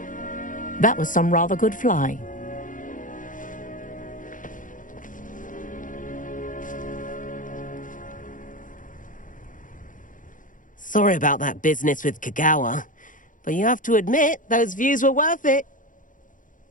That was some rather good flying. Sorry about that business with Kagawa, but you have to admit, those views were worth it.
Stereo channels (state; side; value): late; right; 0.38 ms